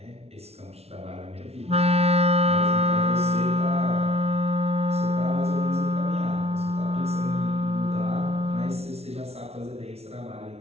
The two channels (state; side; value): late; left; 0.30 ms